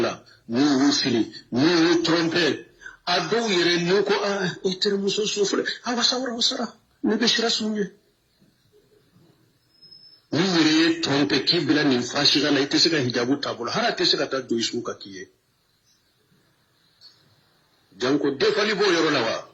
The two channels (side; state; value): both; identical; correlation 1.00